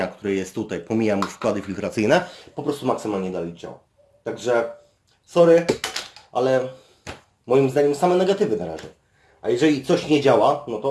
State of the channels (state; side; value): identical; both; correlation 1.00